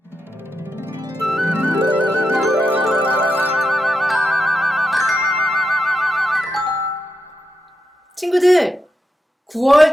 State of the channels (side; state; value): both; normal; correlation 0.85